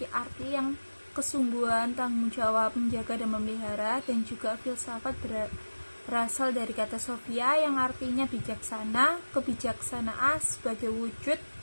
arti yang kesungguhan, tanggung jawab, menjaga dan memelihara, dan juga filsafat berasal dari kata sophia yang artinya bijaksana. Kebijaksanaan sebagai wujud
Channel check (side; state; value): both; inverted; correlation -1.00